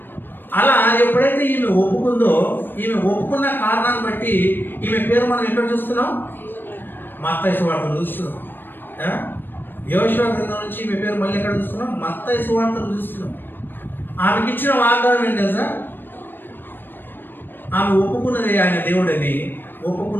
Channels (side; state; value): right; late; 0.095 ms